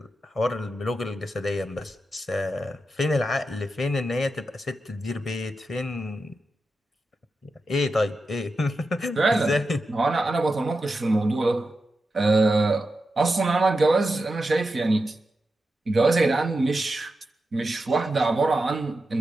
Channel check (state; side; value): normal; both; correlation 0.89